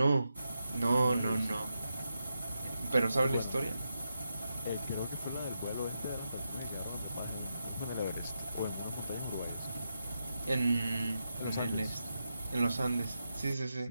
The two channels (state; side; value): inverted; both; correlation -0.86